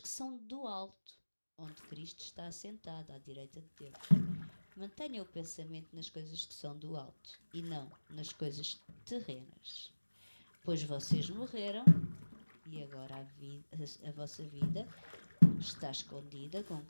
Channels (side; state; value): both; inverted; correlation -1.00